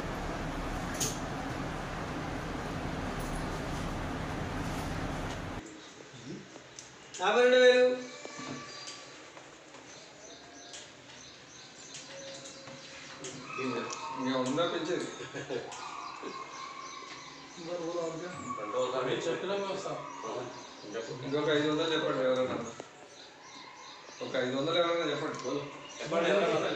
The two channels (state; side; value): identical; both; correlation 1.00